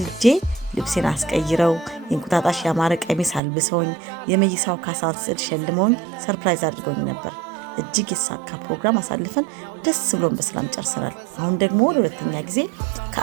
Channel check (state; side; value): drops out; left; at 3.4 s